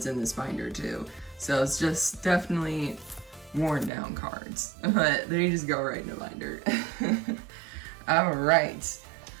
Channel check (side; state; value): left; drops out; at 3.9 s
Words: in this binder too. So it's just definitely worn down cards, but they just go right in the binder. All right.